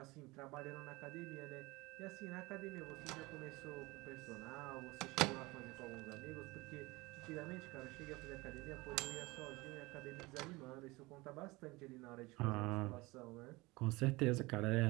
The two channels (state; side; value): quieter; left; 22.4 dB